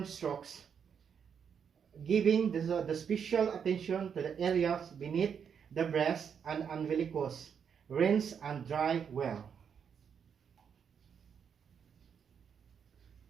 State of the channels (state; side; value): quieter; left; 7.3 dB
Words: strokes. giving the special attention to the areas beneath the breast and umbilicus. Rinse and dry well.